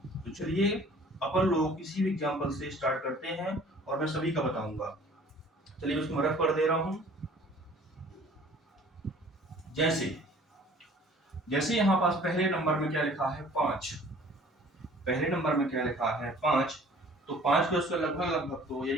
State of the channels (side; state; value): both; normal; correlation 0.51